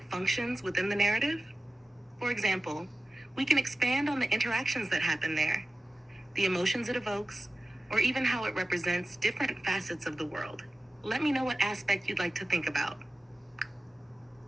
functions within the narrative? For example, we can expand on the interactions that happen there, the emotions it evokes, or even how it represents different facets of the world. Let me know what aspect you'd like to think about.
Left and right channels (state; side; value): normal; both; correlation 0.95